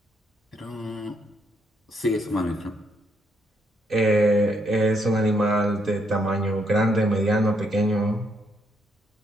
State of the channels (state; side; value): normal; both; correlation 0.74